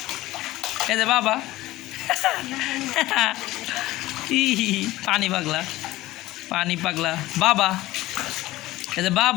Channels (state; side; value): quieter; right; 17.3 dB